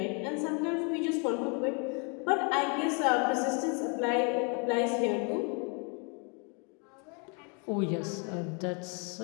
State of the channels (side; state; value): right; quieter; 36.0 dB